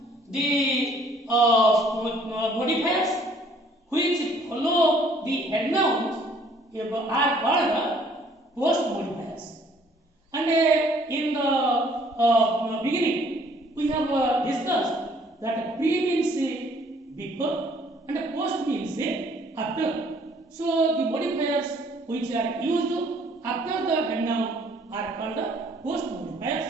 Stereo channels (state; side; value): normal; both; correlation 0.60